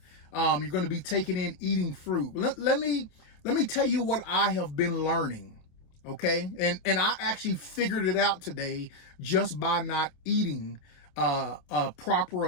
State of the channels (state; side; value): late; right; 28 ms